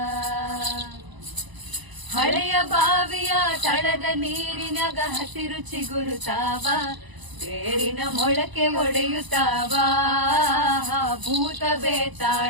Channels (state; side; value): late; left; 1.0 ms